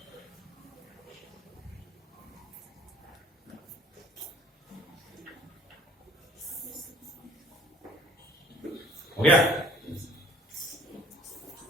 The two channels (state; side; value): normal; both; correlation 0.53